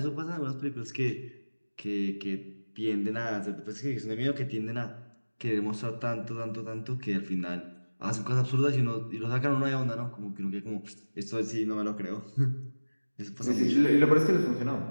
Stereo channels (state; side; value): inverted; both; correlation -1.00